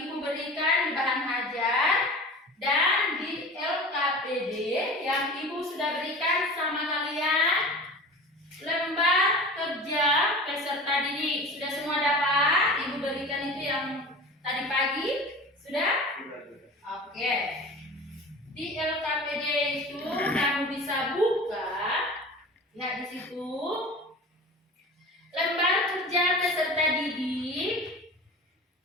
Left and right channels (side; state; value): both; normal; correlation 0.36